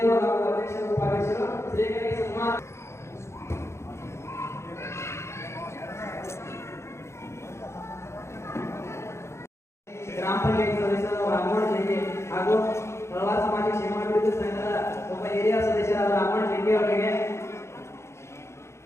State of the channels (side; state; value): right; late; 0.13 ms